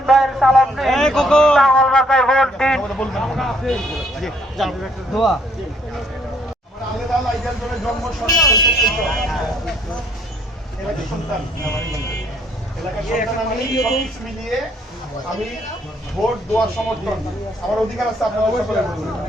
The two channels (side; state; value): both; normal; correlation 0.66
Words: ভাইয়ের সালাম দিন, লাঙ্গল মার্কায় ভোট দিন। দোয়া আমি ভোট দেওয়ার সমর্থন আমার অধিকার আছে আপনারা সকলে